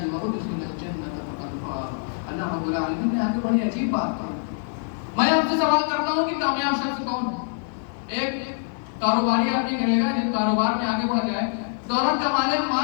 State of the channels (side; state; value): right; silent; digital silence